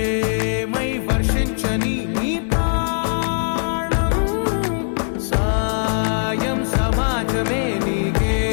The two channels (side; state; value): right; silent; digital silence